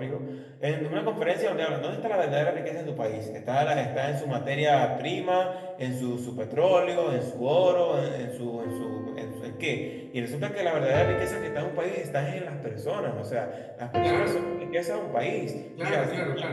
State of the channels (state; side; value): identical; both; correlation 1.00